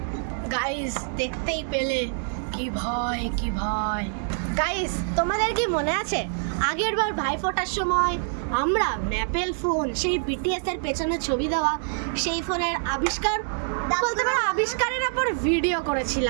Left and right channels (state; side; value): silent; left; digital silence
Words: গাইস, দেখতেই পেলে কি ভয়, কি ভয়। গাইস, তোমাদের কি মনে আছে আগের বার ভাইফোঁটার সময় আমরা ম্যাপেল ফোন, সেই বিটিএস এর পেছনে ছবি দেওয়া সেই ফোনের আবিষ্কার বলতে পারো আবিষ্কারের উপর ভিডিও